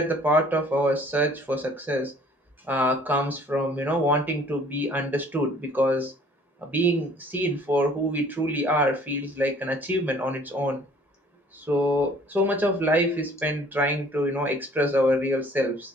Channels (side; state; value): both; normal; correlation 0.54